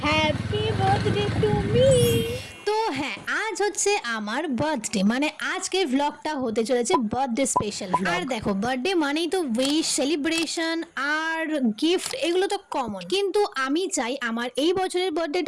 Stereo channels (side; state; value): both; identical; correlation 1.00